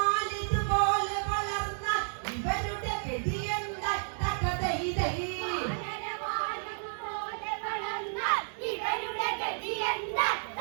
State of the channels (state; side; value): silent; left; 55 dB below the other